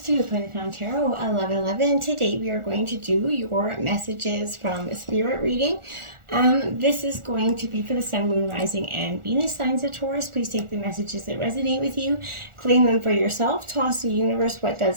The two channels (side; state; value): left; late; 1.4 ms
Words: to Planet Found Tarot 1111. Today we are going to do your messages from Spirit reading. This is going to be for the Sun, Moon, Rising, and Venus signs of Taurus. Please take the messages that resonate with you, claim them for yourself, toss the universe what